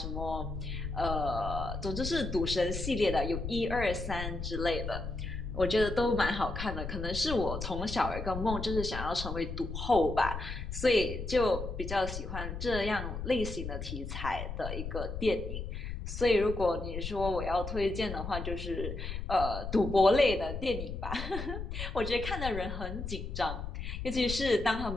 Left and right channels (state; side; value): noise; left; rumble, 6 dB below the sound